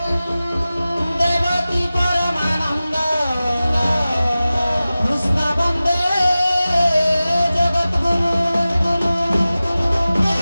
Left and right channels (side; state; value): both; inverted; correlation -0.96